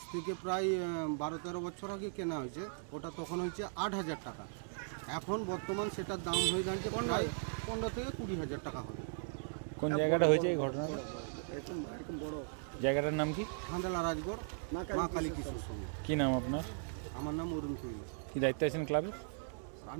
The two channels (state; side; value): silent; left; digital silence